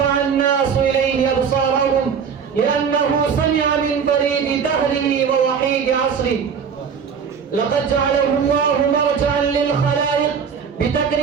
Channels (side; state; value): left; quieter; 6.7 dB